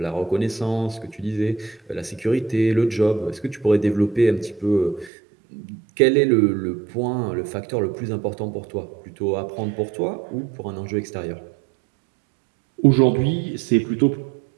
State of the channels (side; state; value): left; drops out; at 5.1 s